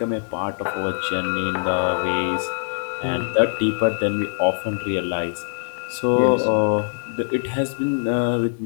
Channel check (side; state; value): right; silent; digital silence